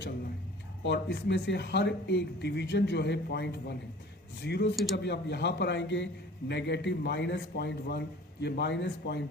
है और इसमें से हर एक डिवीजन जो है 0.1 है. 0 से जब आप यहाँ पर आएंगे नेगेटिव -0.1, ये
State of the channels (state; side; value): normal; both; correlation 0.46